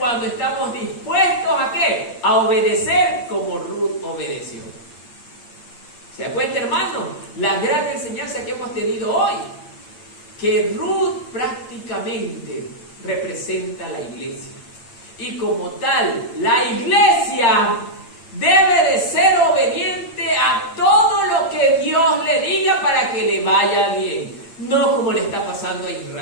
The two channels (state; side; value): late; right; 8.7 ms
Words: estamos dispuestos ¿a qué? A obedecer como Ruth obedeció. ¿Se da cuenta, hermano? La gran enseñanza que hemos tenido hoy, que Ruth prácticamente representa la iglesia. Y como tal, la iglesia debe de ser obediente a todo lo que Dios le diga para que le vaya bien. No como le está pasando a